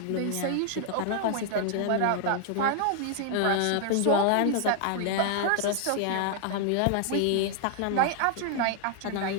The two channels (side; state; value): both; different; correlation 0.00